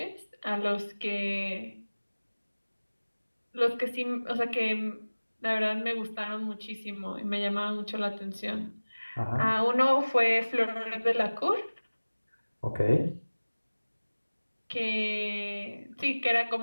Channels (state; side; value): inverted; both; correlation -1.00